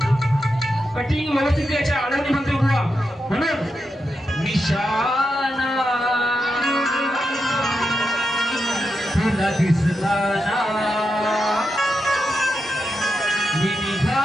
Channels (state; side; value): normal; both; correlation 0.87